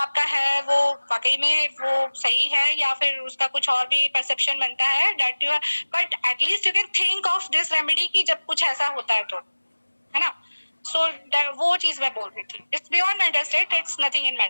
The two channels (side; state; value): both; inverted; correlation -1.00